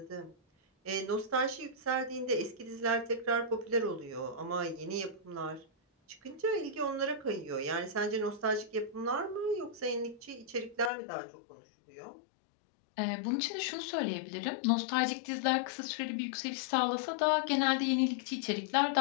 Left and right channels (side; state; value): right; drops out; at 10.9 s